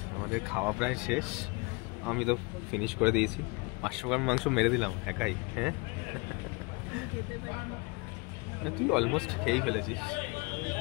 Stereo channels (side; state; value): right; quieter; 28.2 dB